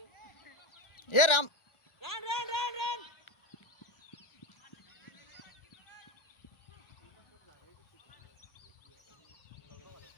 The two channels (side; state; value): right; late; 1.3 ms